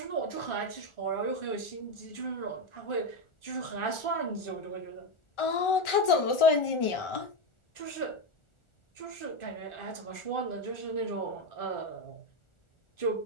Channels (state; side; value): late; right; 1.4 ms